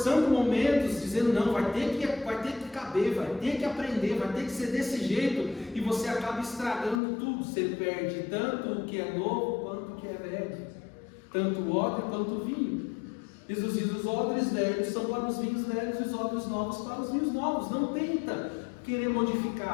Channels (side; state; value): right; drops out; at 7.0 s